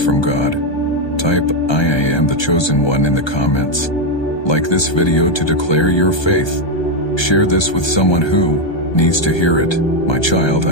from God. Type, I am the chosen one in the comments. Like this video to declare your faith. Share this with someone who needs to hear it. My child,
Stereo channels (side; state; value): right; late; 1.3 ms